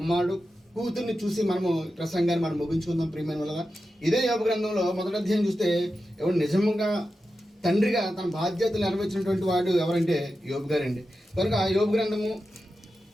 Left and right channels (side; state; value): both; normal; correlation 0.91